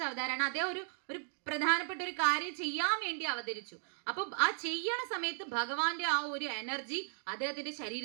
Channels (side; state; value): left; silent; 54 dB below the other